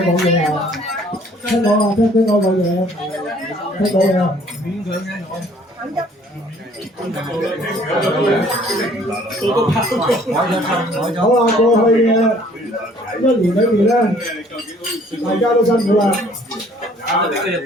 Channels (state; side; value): normal; both; correlation 0.57